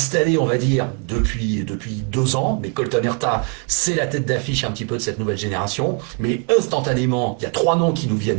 on va dire, depuis 2 ans. Mais Colton Herta, c'est la tête d'affiche un petit peu de cette nouvelle génération. Mais instantanément, il y a 3 noms qui nous viennent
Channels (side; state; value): left; quieter; 35.9 dB